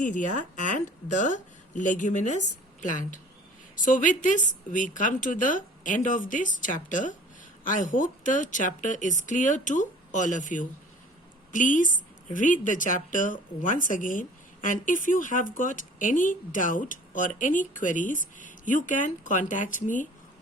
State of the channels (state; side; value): normal; both; correlation 0.48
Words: and the leguminous plant. So with this, we come to the end of this chapter. I hope the chapter is clear to all of you. Please read the chapter once again, and if you have got any doubt or any queries, you can contact me